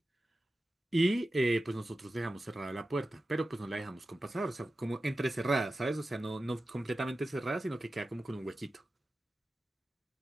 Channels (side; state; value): both; normal; correlation 0.94